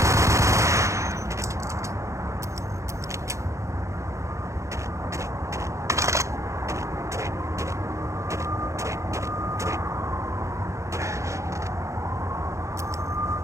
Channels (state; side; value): late; left; 0.15 ms